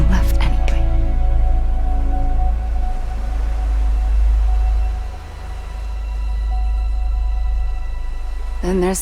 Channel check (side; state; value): both; identical; correlation 1.00